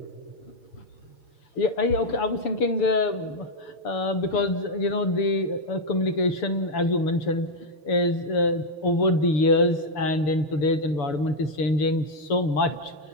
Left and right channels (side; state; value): right; late; 7.0 ms